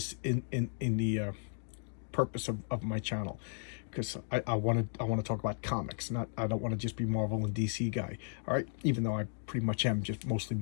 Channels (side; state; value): right; silent; 55 dB below the other